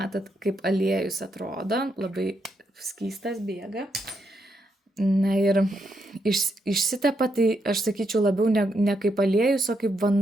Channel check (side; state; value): both; normal; correlation 0.80